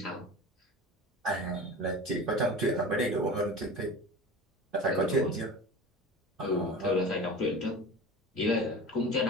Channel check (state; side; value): normal; both; correlation 0.34